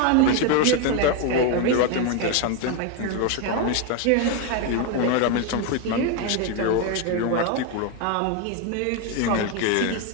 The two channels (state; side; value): different; both; correlation 0.01